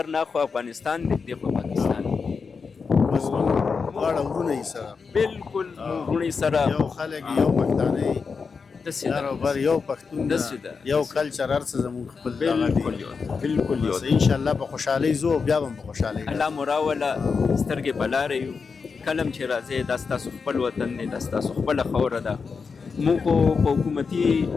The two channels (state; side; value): quieter; right; 5.2 dB